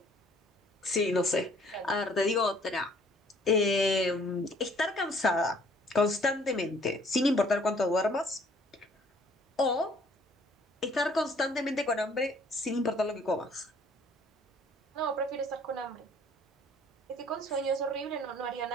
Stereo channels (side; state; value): both; normal; correlation 0.59